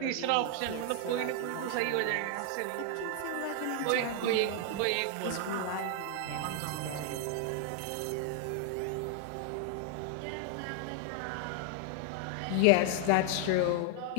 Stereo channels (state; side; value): different; both; correlation 0.00